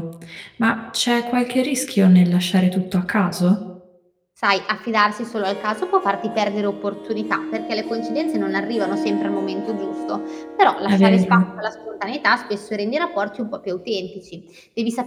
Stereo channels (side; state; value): both; identical; correlation 1.00